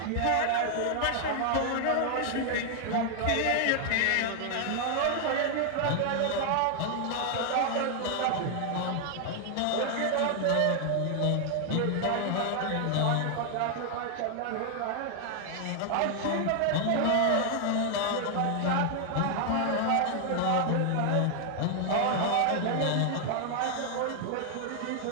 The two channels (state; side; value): different; both; correlation 0.00